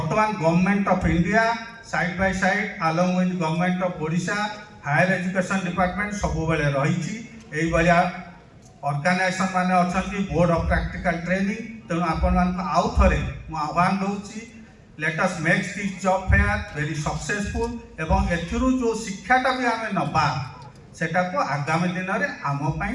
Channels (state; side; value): identical; both; correlation 1.00